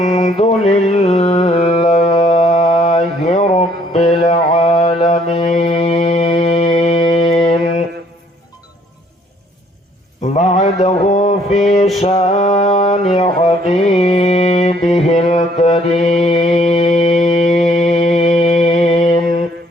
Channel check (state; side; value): normal; both; correlation 0.63